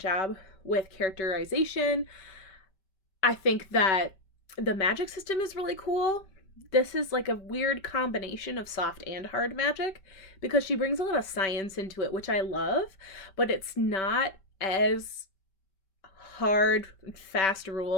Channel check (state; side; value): late; right; 5.2 ms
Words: with characterization. I think that the magic system is really cool. This is like a weird combination of soft and hard magic, because she brings a lot of science into it, which I love, but it's not as hard, fast